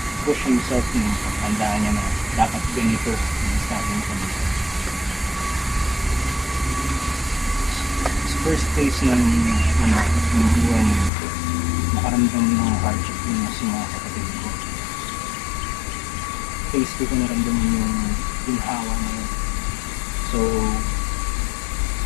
push himself na pagtandaan niya na dapat ganito yung sabi mo kanina. First phase ng buhay niya, nakaramdam nakaramdam ng hardship yung mas mga kapatid ko. Face ko naramdaman yung ginhawa na yun. So,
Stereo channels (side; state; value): right; drops out; at 11.1 s